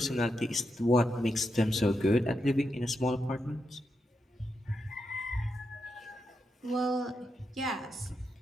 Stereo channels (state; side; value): normal; both; correlation 0.85